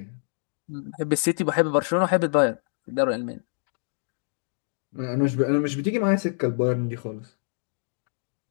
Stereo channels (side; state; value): right; silent; digital silence